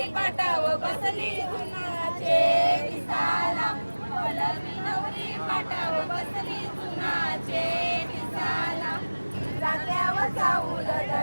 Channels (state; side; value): inverted; both; correlation -1.00